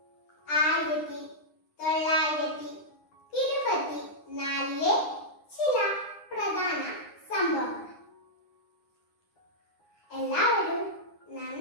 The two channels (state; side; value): late; right; 9.8 ms